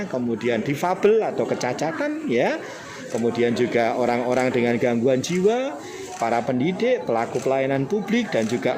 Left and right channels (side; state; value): both; identical; correlation 1.00